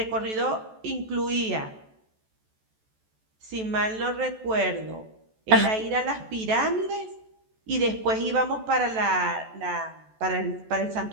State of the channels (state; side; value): late; left; 14 ms